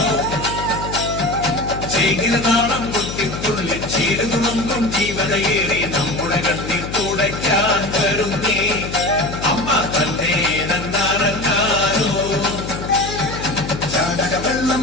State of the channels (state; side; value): noise; left; hum, 8 dB below the sound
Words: ചീരതാളം കൊട്ടിത്തുള്ളി ചീരതുളമ്പും ജീവതയേറി നമ്മുടെ കണ്ണിൽ തുടയ്ക്കാൻ വരുന്നേ. അമ്മ തന്നെ വെള്ളം